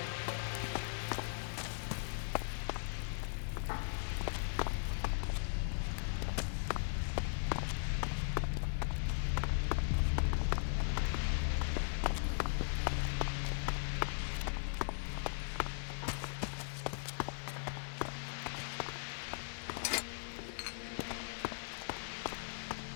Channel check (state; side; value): silent; right; digital silence